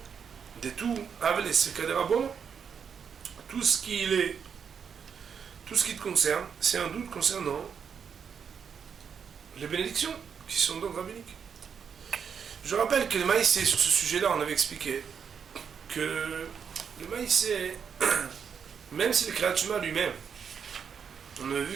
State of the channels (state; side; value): quieter; left; 7.0 dB